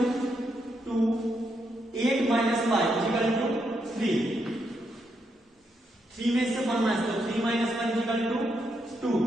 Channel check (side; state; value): both; normal; correlation 0.80